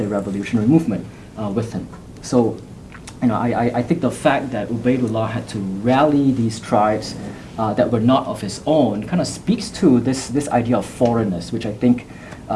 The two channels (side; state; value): both; identical; correlation 1.00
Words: revolutionary movement with him. So, I think the fact that Ubaidullah had to rally these tribes that were not of his own kind of speaks to this idea of foreignness, which I think